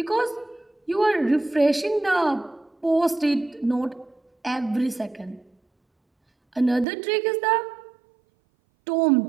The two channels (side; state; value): left; drops out; at 6.9 s